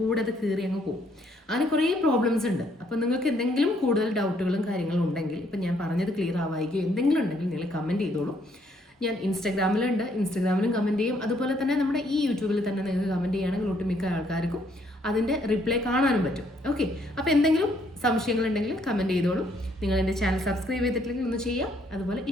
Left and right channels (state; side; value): normal; both; correlation 0.68